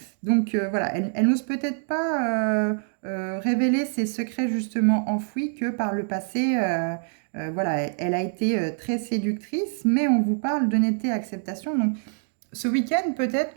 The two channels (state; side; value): silent; left; 61 dB below the other